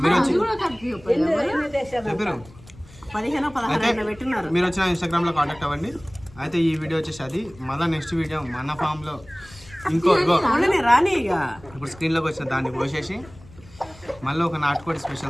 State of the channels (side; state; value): left; noise; rumble, 22 dB below the sound